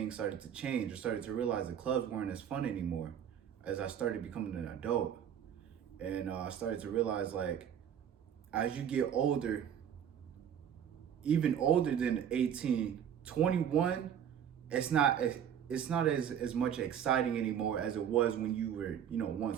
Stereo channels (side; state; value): left; quieter; 9.0 dB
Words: started to change. I started to realize the clubs weren't as fun anymore as I started becoming an adult. And I started to realize, like, as you get older, even older than 18, 21, it's not as much exciting anymore as it was when you were,